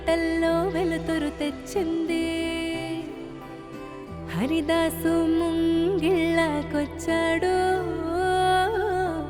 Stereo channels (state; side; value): identical; both; correlation 1.00